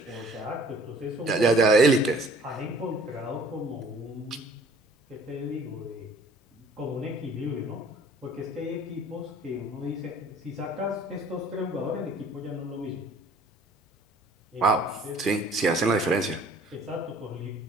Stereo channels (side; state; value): both; normal; correlation 0.54